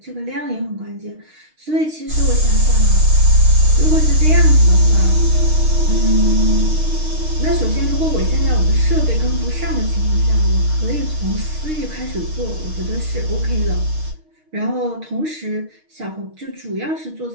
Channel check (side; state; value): left; late; 6.4 ms